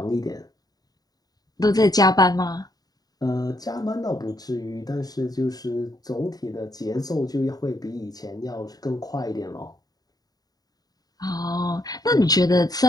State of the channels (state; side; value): late; right; 0.18 ms